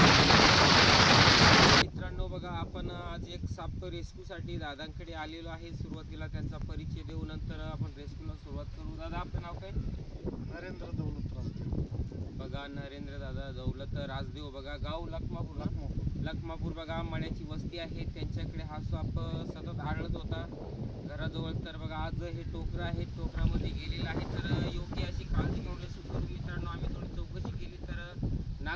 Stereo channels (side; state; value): both; identical; correlation 1.00